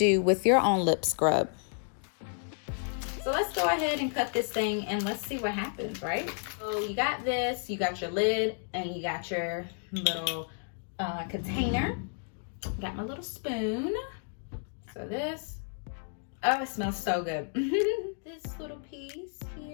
with your own lip scrub. So let's go ahead and cut this thing and let's see what happens, right? So you got this, you got your lid, and you got your little container. Got my little spoon. So this, oh, it smells so good. This little piece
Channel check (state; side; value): silent; right; 57 dB below the other